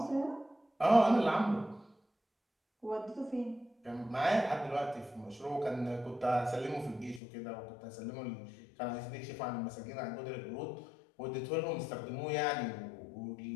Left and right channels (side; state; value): right; drops out; at 7.2 s